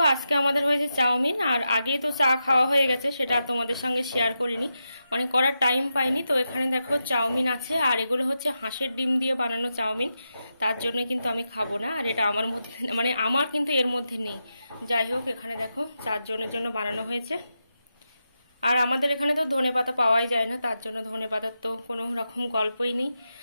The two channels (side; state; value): both; inverted; correlation -0.88